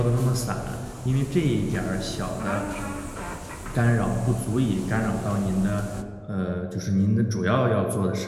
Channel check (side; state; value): both; identical; correlation 1.00